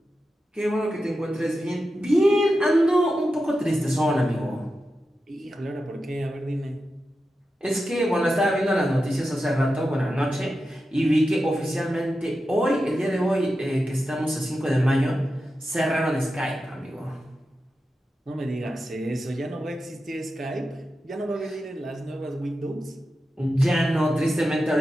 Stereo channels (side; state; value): both; normal; correlation 0.91